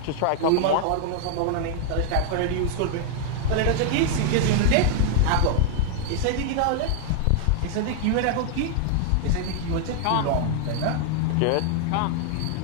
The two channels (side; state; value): both; different; correlation 0.00